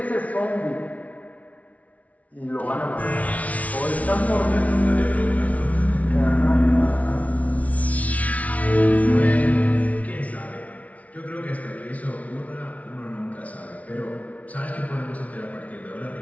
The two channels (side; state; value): right; late; 0.068 ms